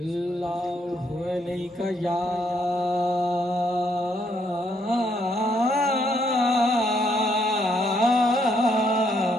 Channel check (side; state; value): both; normal; correlation 0.73